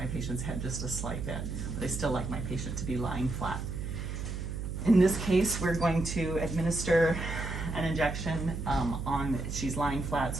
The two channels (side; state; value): right; noise; hum, 5 dB below the sound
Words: patient's head just a slight bit, but I still like my patient to be lying flat. In this case, we're going to administer an injection she's lying flat,